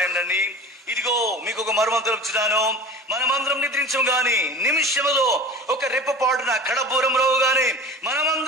అండి. ఇదిగో మీకు ఒక మర్మం తెలుపుచున్నాను, మనమందరం నిద్రించము గాని నిమిషములో ఒక రెప్పపాటున కడబూరం రోగు గాని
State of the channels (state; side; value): normal; both; correlation 0.37